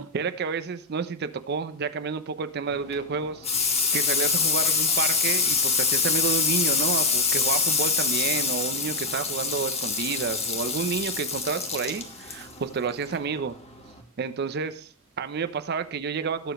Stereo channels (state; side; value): normal; both; correlation 0.03